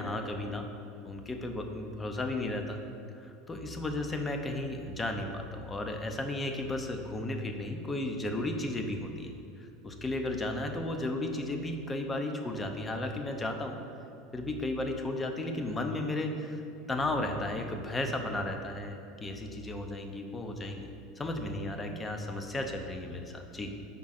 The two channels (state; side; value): normal; both; correlation 0.56